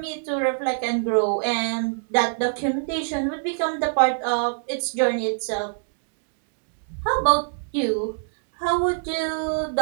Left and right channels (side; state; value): left; silent; digital silence